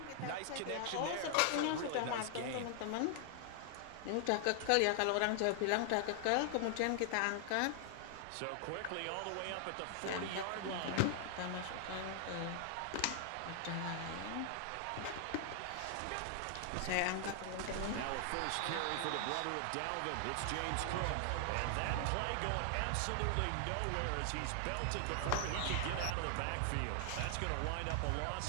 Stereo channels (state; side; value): different; both; correlation 0.00